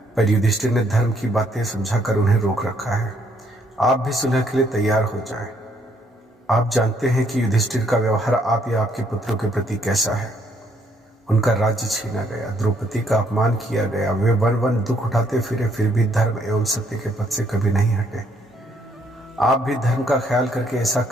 पर युधिष्ठिर ने धर्म की बातें समझाकर उन्हें रोक रखा है। आप भी सुलह के लिए तैयार हो जाएं। आप जानते हैं कि युधिष्ठिर का व्यवहार आप या आपके पुत्रों के प्रति कैसा है। उनका राज्य छीना गया, द्रौपदी का अपमान किया गया, वे वन वन दुख उठाते फिरे, फिर भी धर्म एवं सत्य के पथ से कभी नहीं हटे। आप भी धर्म का ख्याल करके ऐसा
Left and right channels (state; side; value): normal; both; correlation 0.69